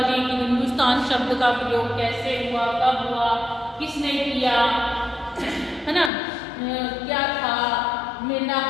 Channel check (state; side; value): drops out; right; at 6.1 s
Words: की हिंदुस्तान शब्द का प्रयोग कैसे हुआ, कब हुआ, किसने किया, है ना। क्या था,